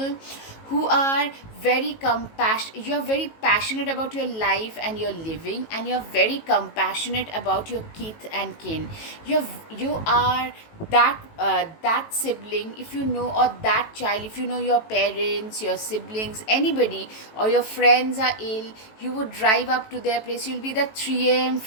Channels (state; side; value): late; right; 18 ms